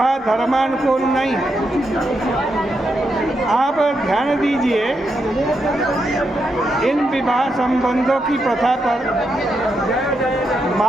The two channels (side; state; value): both; normal; correlation 0.83